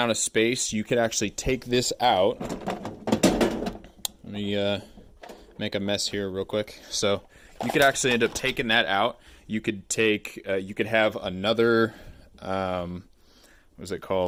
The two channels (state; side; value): identical; both; correlation 1.00